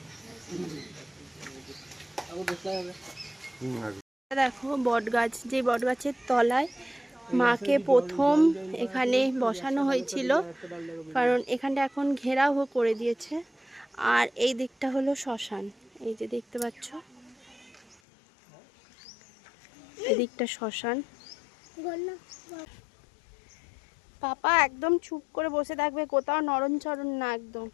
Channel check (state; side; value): drops out; right; at 17.9 s